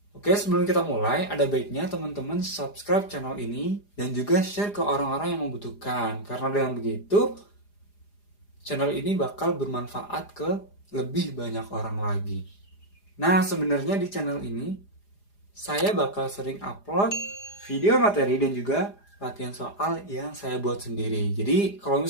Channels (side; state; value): right; late; 4.9 ms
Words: Oke, sebelum kita mulai, ada baiknya teman-teman subscribe channel ini dan juga share ke orang-orang yang membutuhkan. Karena dengan begitu, channel ini bakal bermanfaat ke lebih banyak orang lagi. Nah, sebenarnya di channel ini saya bakal sering upload video materi dan juga latihan soal yang saya buat sendiri. Jadi, kalau